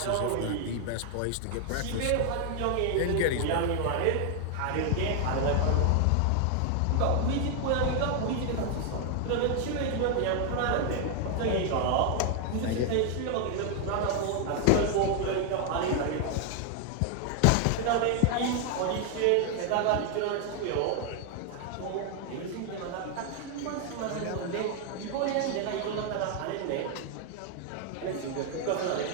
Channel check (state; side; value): different; both; correlation 0.00